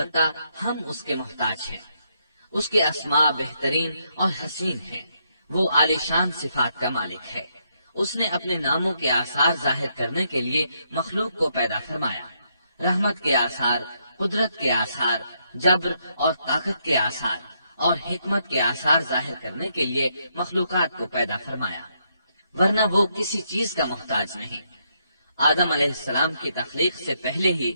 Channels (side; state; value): both; inverted; correlation -0.76